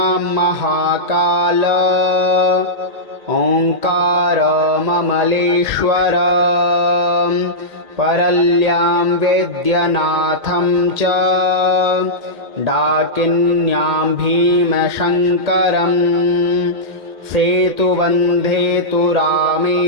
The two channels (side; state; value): left; late; 2.1 ms